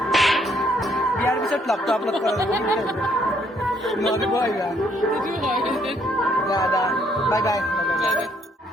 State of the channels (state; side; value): normal; both; correlation 0.68